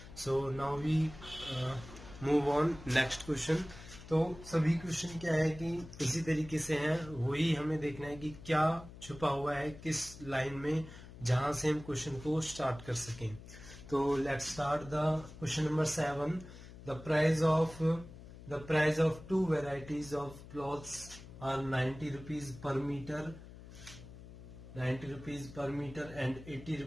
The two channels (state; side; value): noise; left; hum, 16 dB below the sound